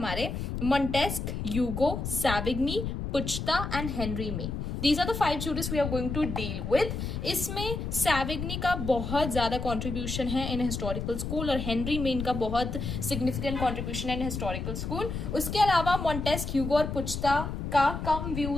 Montesquieu, Hugo, Savigny, Puchta and Henry Maine. These are the 5 jurists we are going to deal with. इसमें सैविग्नी का बहुत ज़्यादा contribution है in historical school और Henry main का बहुत significant contribution है in historical school. उसके अलावा मॉन्टेस्क, ह्यूगो और पुचता का कम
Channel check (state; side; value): noise; left; rumble, 4 dB below the sound